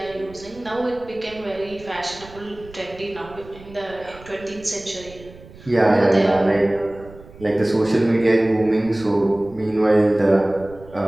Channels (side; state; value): right; noise; rumble, 20 dB below the sound